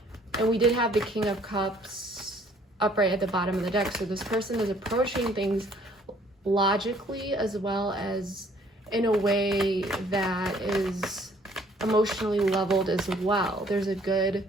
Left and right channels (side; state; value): both; normal; correlation 0.60